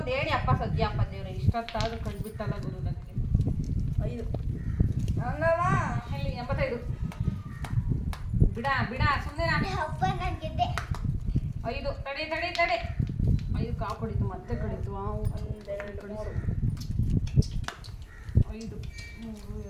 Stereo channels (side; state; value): both; identical; correlation 1.00